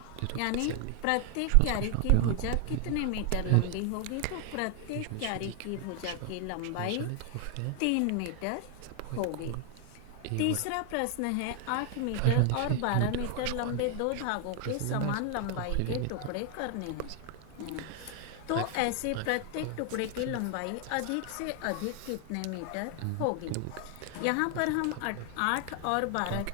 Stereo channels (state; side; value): different; both; correlation 0.00